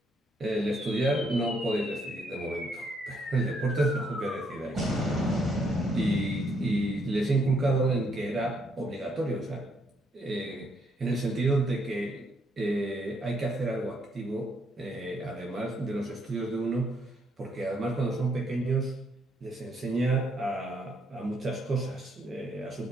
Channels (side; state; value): both; normal; correlation 0.72